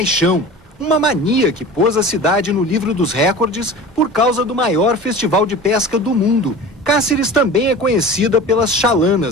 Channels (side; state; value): right; noise; hum, 30 dB below the sound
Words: uma mania que pôs a cidade no livro dos recordes por causa do maior festival de pesca do mundo. Cáceres também é conhecida pelas